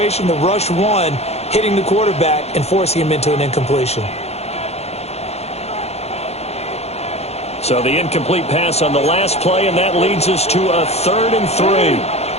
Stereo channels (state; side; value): late; right; 0.31 ms